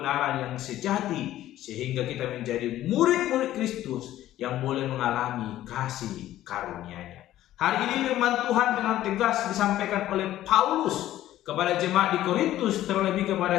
yang sejati, sehingga kita menjadi murid-murid Kristus yang boleh mengalami kasih karunia-Nya. Hari ini firman Tuhan dengan tegas disampaikan oleh Paulus kepada jemaat di Korintus, terlebih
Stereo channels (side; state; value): right; quieter; 13.7 dB